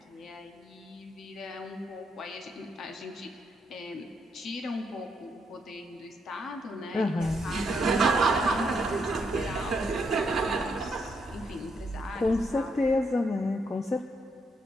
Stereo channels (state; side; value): normal; both; correlation 0.77